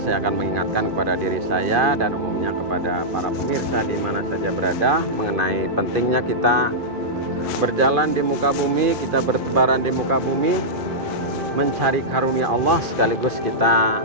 saya akan mengingatkan kepada diri saya dan umumnya kepada para pemirsa di mana saja berada mengenai pentingnya kita berjalan di muka bumi, kita bertebaran di muka bumi, mencari karunia Allah sekaligus kita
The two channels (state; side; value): late; left; 2.5 ms